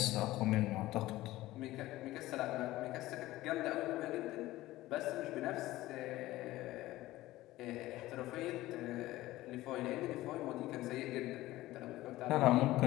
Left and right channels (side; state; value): right; quieter; 16.9 dB